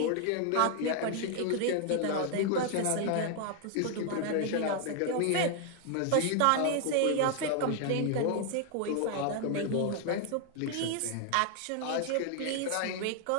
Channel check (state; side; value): different; both; correlation 0.00